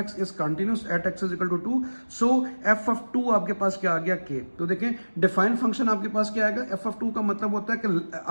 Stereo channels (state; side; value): inverted; both; correlation -1.00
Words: is continuous at x is equal to 2, f of ऑफ 2 आपके पास क्या आ गया, के। तो देखें डिफाइंड फंक्शन आपके पास क्या आएगा, एफ ऑफ 2 का मतलब होता है कि